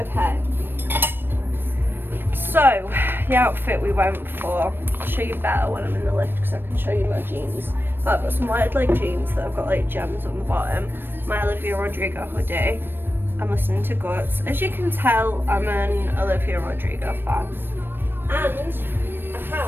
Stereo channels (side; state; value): left; late; 0.098 ms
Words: So, the outfit we went for, I'll show you better when I'm in the lift because I can show you my jeans. But I've got some wide leg jeans that have got like gems on the bottom, my Olivia Rodrigo hoodie. I'm listening to Guts. As you can tell, I'm an Olivia Rodrigo fan. And I